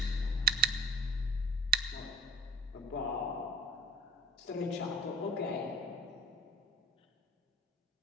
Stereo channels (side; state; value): both; normal; correlation 0.42